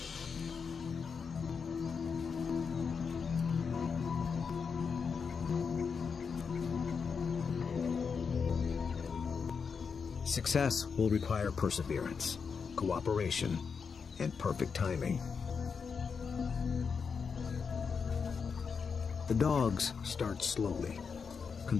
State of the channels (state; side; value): quieter; right; 5.8 dB